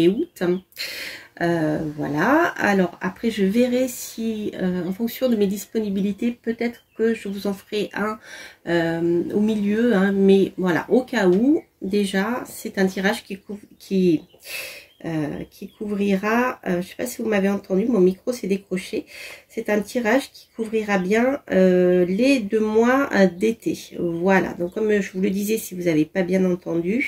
août. Voilà, alors après je verrai si en fonction de mes disponibilités peut-être que je vous en ferai un au milieu, hein, mais voilà, au cas où, déjà c'est un tirage qui couvrira, je ne sais pas si vous m'avez entendu, mon micro s'est décroché, c'est un tirage qui couvrira bien les 2 mois d'été. Voilà, donc comme je vous le disais, si vous n'avez pas bien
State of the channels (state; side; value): identical; both; correlation 1.00